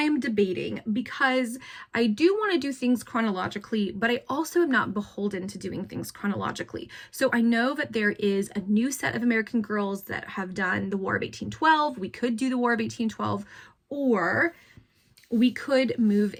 debating because I do want to do things chronologically, but I also am not beholden to doing things chronologically. So I know that there is a new set of American Girls that have done the War of 1812. We could do the War of 1812, or we could move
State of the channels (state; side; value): identical; both; correlation 1.00